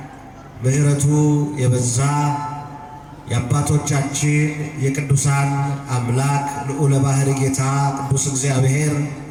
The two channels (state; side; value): identical; both; correlation 1.00